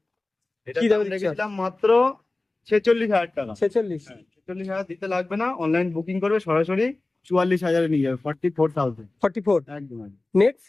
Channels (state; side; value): quieter; right; 3.0 dB